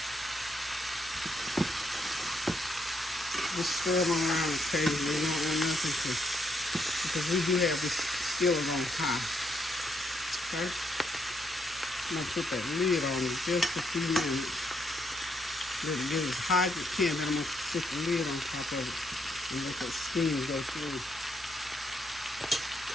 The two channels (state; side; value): normal; both; correlation 0.75